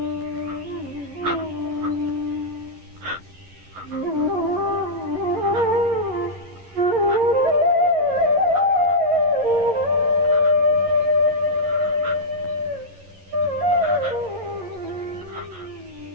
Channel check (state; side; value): late; left; 11 ms